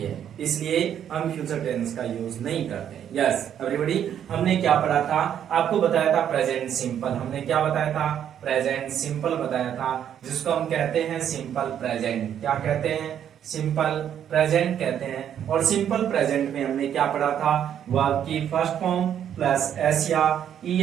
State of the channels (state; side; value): quieter; left; 9.5 dB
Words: है, इसलिए हम फ्यूचर टेंस का यूज नहीं करते। यस एवरीबॉडी, हमने क्या पढ़ा था, आपको बताया था प्रेजेंट सिंपल। हमने क्या बताया था, प्रेजेंट सिंपल बताया था, जिसको हम कहते हैं सिंपल प्रेजेंट। क्या कहते हैं, सिंपल प्रेजेंट कहते हैं। और सिंपल प्रेजेंट में हमने क्या पढ़ा था, वर्ब की फर्स्ट फॉर्म प्लस एस या